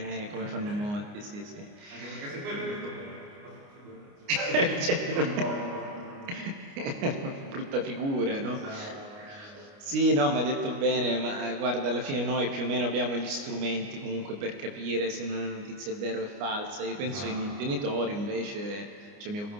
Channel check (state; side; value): late; left; 29 ms